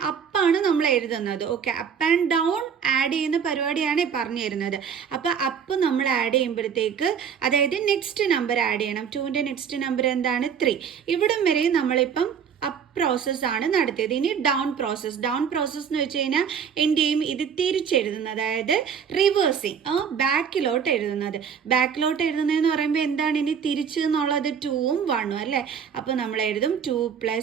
അപ്പാണ് നമ്മൾ എഴുതുന്നത്. Okay, up and down add ചെയ്യുന്ന പരിപാടിയാണ് പറഞ്ഞു തരുന്നത്. അപ്പോൾ അപ്പ് നമ്മൾ ആഡ് ചെയ്യുമ്പോഴത്തേക്ക്, അതായത് നെക്സ്റ്റ് നമ്പർ ആഡ് ചെയ്യണം. 2ന്റെ നെക്സ്റ്റ് നമ്പർ എന്താണ് 3. ഇവിടം വരെ നമ്മളിപ്പം അപ്പ് പ്രോസസ് ആണ് നടത്തിയത്. ഇനി ഡൗൺ പ്രോസസ് എന്ന് വെച്ച് കഴിഞ്ഞാൽ എന്ത് ചെയ്യും, ഇത് തിരിച്ചെഴുതുന്നത്, അതായത് റിവേഴ്സിങ്, ബാക്കിലോട്ട് എഴുതുന്നതെന്ന് പറയുമ്പോൾ എന്താണ്, ഇനി തിരിച്ച് എന്നുള്ളത് 2ഉം 1ഉം അല്ലേ. അപ്പോൾ നമ്മൾ എഴുതും 2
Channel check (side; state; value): left; quieter; 7.3 dB